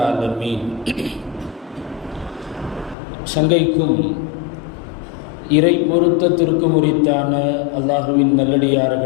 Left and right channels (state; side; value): drops out; right; at 3.0 s